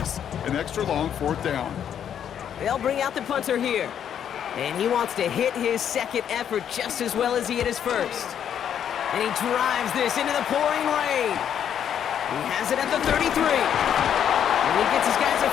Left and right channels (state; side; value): quieter; right; 9.1 dB